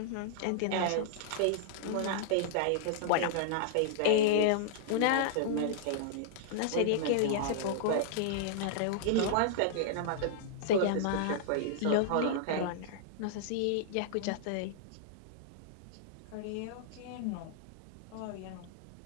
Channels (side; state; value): both; different; correlation -0.01